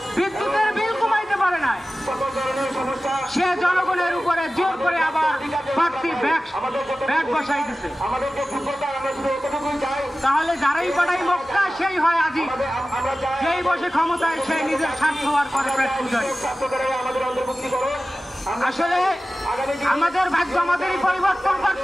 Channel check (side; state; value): both; normal; correlation 0.96